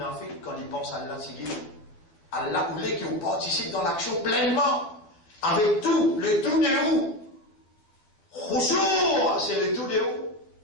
quand ils pensent à Allah, c'est Allah voulait qu'ils participent dans l'action pleinement, avec tout, le tout de où. Khushu', c'est le tout de où.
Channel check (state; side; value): late; right; 12 ms